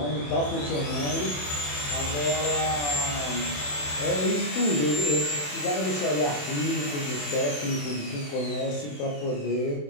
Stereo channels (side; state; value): right; late; 27 ms